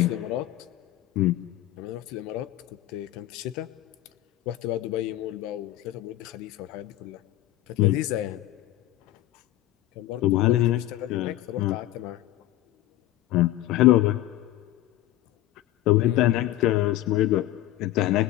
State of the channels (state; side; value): quieter; right; 14.9 dB